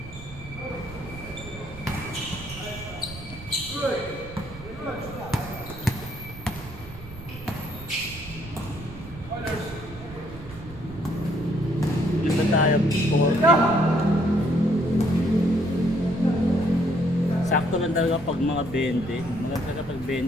Dito tayo, 40. Sakto lang talaga pag mga 20. Mga talaga pag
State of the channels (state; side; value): noise; right; rumble, 15 dB below the sound